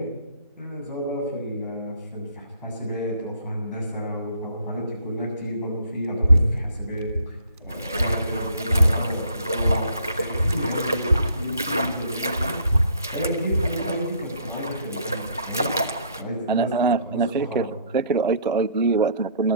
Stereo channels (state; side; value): inverted; both; correlation -0.60